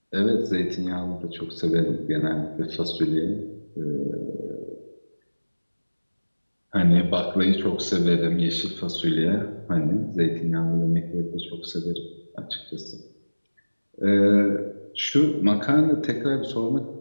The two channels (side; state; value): both; inverted; correlation -1.00